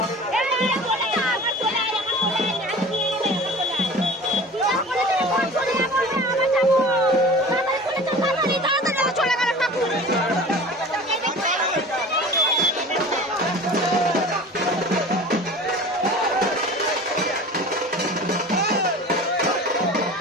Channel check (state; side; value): normal; both; correlation 0.39